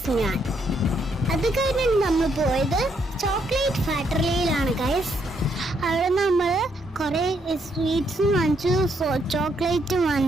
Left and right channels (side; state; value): both; normal; correlation 0.74